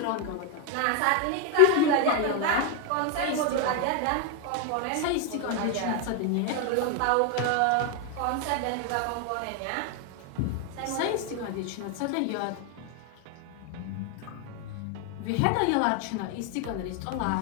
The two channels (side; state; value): both; different; correlation 0.01